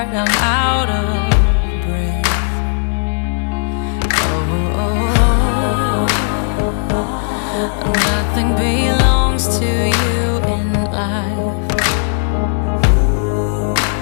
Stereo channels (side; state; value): right; silent; digital silence